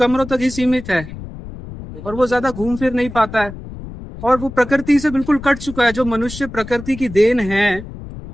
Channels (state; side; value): noise; left; rumble, 12 dB below the sound